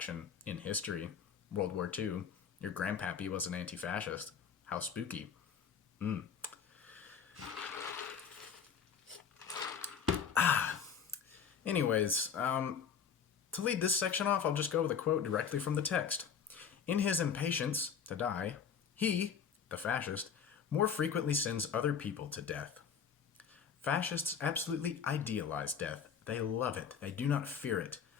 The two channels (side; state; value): right; quieter; 7.1 dB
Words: in history. World War II. Your grandpappy was an anti-fascist. How spooky. Anyways, to lead this section off, I'll just go with a quote directly from the text. In his impatience to die, he, the fascist, more frequently sends other people to death. Fascists absolutely idealize death. They love it. They do not fear it.